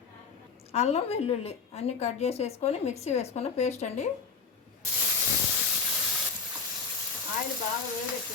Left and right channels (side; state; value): right; quieter; 5.3 dB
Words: అల్లం వెల్లుల్లి అన్నీ కట్ చేసి వేసుకొని మిక్సీ వేసుకున్న పేస్ట్ అండి. ఆయిల్ బాగా